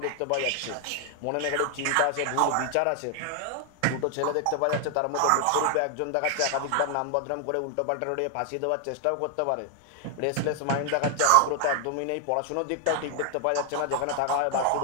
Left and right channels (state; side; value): different; both; correlation 0.00